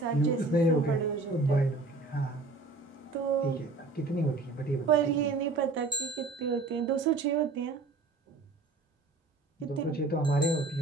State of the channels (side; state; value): left; quieter; 3.4 dB